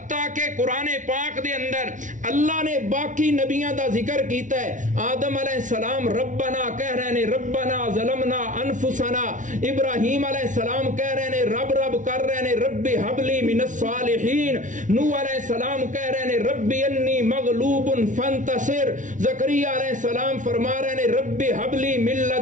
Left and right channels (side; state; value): left; late; 0.37 ms